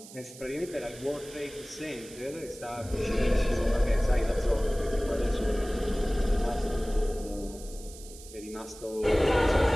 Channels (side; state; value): right; noise; hiss, 17 dB below the sound